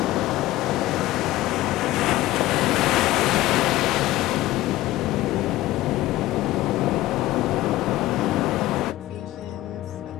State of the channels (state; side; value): quieter; right; 16.3 dB